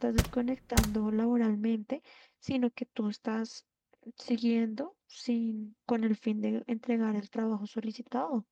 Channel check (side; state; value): both; identical; correlation 1.00